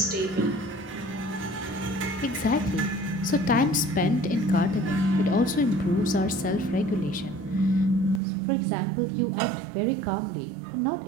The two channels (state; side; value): drops out; left; at 8.2 s